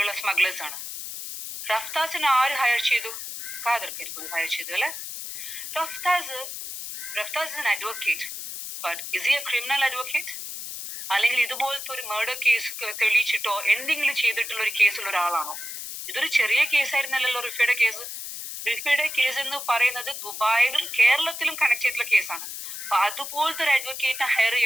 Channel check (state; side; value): noise; left; hiss, 8 dB below the sound